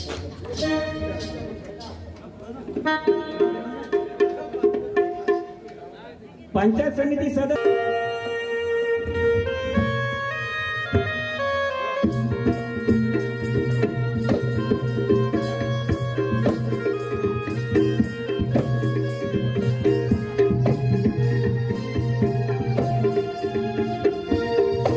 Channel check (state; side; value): identical; both; correlation 1.00